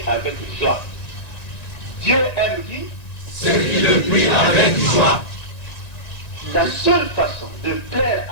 avec joie. Dieu aime qui? Ceux qui le prient avec joie. La seule façon de plaire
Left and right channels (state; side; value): late; right; 1.9 ms